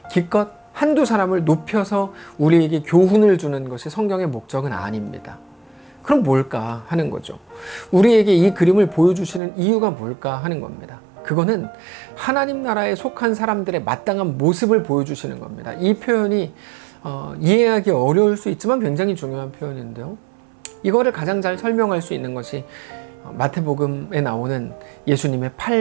기껏 한두 사람을 높여서 우리에게 교훈을 주는 것이 성경의 목적은 아닙니다. 그럼 뭘까 하는 거죠. 우리에게 이 그림을 보여주시는 이유가 뭘까 하는 겁니다. 그거는 하나님 나라에 속한 사람들의 마땅한 모습을 보여주시는 겁니다. 이 표현이 이해하기 어려울 수 있지만 굉장히 중요한 표현인데요. 이거를 가장 잘 설명할 수 있는 것이 마태복음에 나오는 예수님의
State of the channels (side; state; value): left; drops out; at 9.4 s